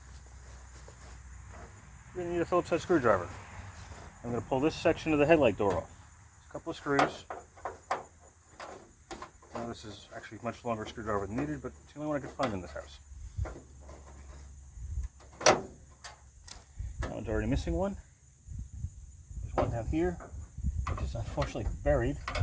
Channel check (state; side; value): identical; both; correlation 1.00